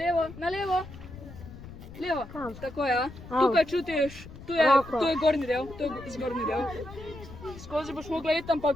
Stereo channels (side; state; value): left; noise; rumble, 15 dB below the sound